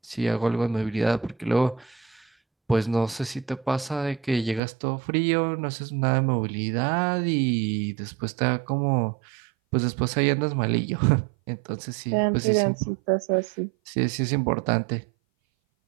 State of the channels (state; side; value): drops out; left; at 4.6 s